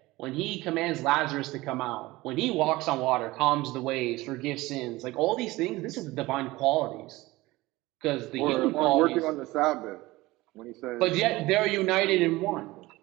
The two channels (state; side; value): quieter; left; 19.7 dB